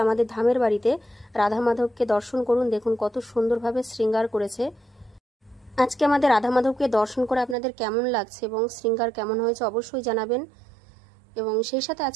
ধামের বাড়িতে রাধা মাধবকে দর্শন করুন। দেখুন কত সুন্দরভাবে শৃঙ্গার করেছে। আজকে আমাদের রাধা মাধবকে দর্শন করে আপনাদের কেমন লাগছে এবং শৃঙ্গার কেমন হয়েছে অবশ্যই জানাবেন। এবং সেই সাথে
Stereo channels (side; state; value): left; drops out; at 7.6 s